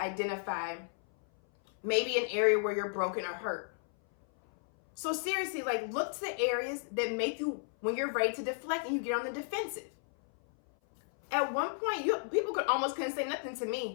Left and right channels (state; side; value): silent; right; 56 dB below the other